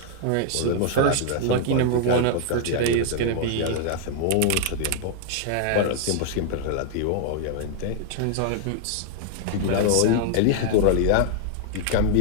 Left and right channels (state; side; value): different; both; correlation 0.00